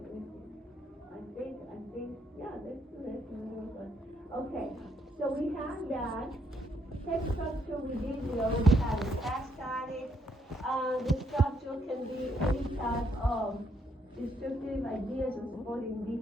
I think, yeah, let's do this. Okay, so we have that. Text structure we already had a task on it. The structure can be any type of descriptive ideas or supporting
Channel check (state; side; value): normal; both; correlation 0.73